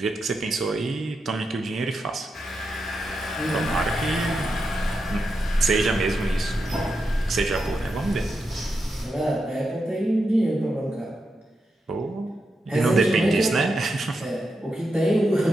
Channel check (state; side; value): normal; both; correlation 0.86